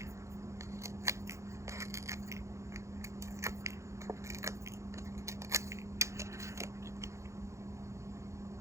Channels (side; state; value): left; late; 0.14 ms